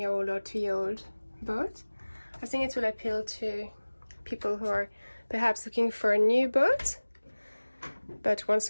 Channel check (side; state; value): both; inverted; correlation -1.00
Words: or 2-year-old boat. I think it will appeal to people who are perhaps looking for a new boat, but want